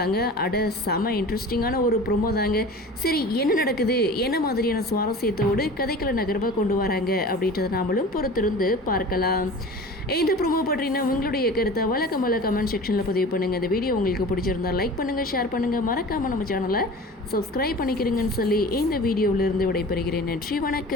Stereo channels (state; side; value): normal; both; correlation 0.38